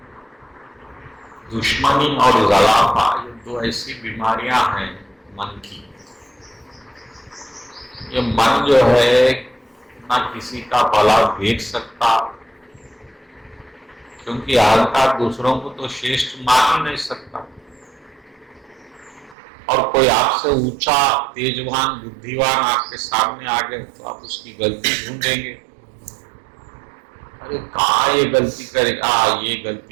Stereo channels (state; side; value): drops out; left; at 19.4 s